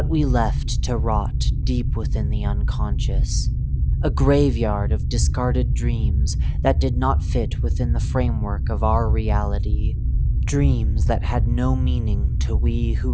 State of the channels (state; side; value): identical; both; correlation 1.00